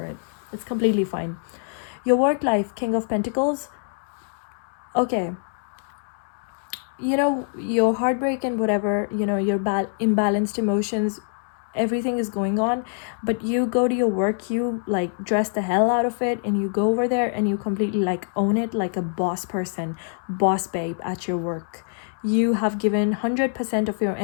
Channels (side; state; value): right; silent; 62 dB below the other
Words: it. It's completely fine. Your work life, King of Pentacles. Okay. Your heartbreak and whatever, your imbalanced emotions, everything is going on, but you go to your work, you like dress the hell out of it, and you go over there and you completely like own it like a boss person, boss babe at your work. You have given 100% of your